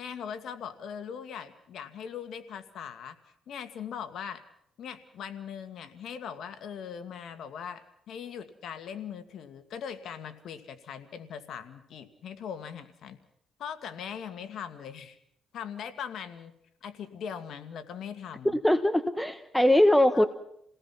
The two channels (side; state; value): both; normal; correlation 0.92